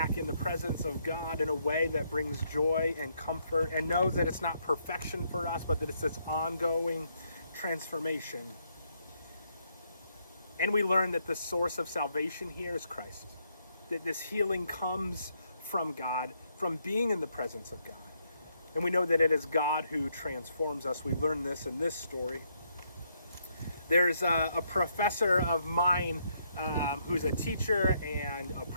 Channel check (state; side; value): inverted; both; correlation -0.75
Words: in the presence of God in a way that brings joy and comfort, and know that it's not perfection for us, but that it's this ongoing transformation. And we learn that the source of salvation here is Christ, that this healing comes from God, from being in the presence of God. And we know that it is God who transforms us. We learn this in this story. There's a professor of mine who's a teacher and a